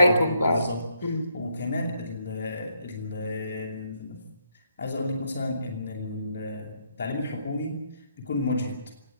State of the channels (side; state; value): both; inverted; correlation -0.74